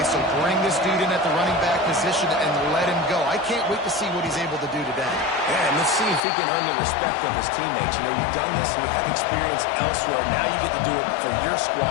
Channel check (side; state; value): right; drops out; at 6.2 s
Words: so bring this dude in at the running back position and let him go. I can't wait to see what he's able to do today. Yeah, and let's see if he can earn the respect of his teammates. You know, you've done this and you have experience elsewhere. Now you get to do it for your